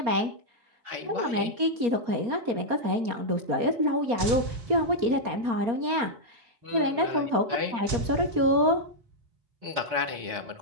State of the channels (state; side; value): late; left; 4.3 ms